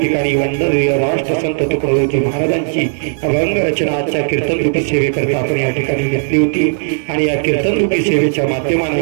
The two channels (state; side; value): silent; left; digital silence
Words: ठिकाणी वंदनीय राष्ट्रसंत तुकडोजी महाराजांची अभंग रचना आजच्या कीर्तनरूपी सेवेकरता आपण या ठिकाणी घेतली होती. आणि या कीर्तनरूपी सेवेच्या